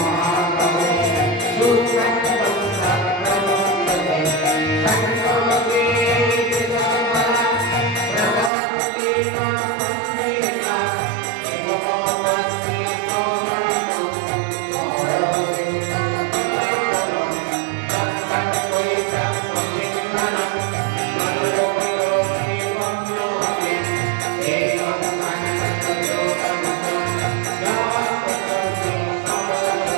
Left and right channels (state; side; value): drops out; left; at 8.5 s